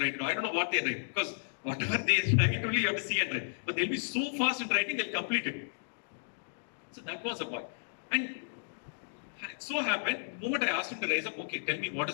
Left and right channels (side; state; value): right; silent; digital silence